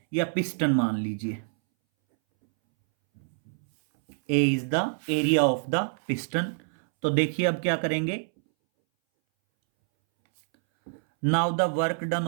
या पिस्टन मान लीजिए। A is the area of the piston. तो देखिए अब क्या करेंगे, now the work done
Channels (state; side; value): silent; left; 61 dB below the other